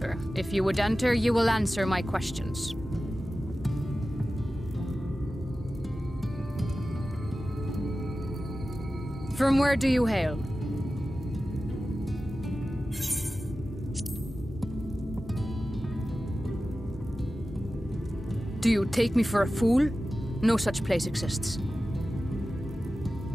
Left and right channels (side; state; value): both; normal; correlation 0.94